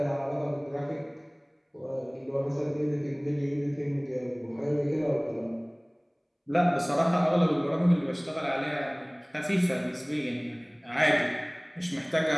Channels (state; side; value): identical; both; correlation 1.00